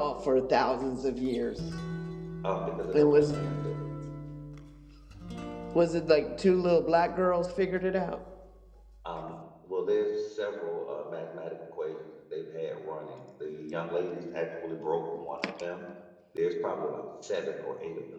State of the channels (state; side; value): identical; both; correlation 1.00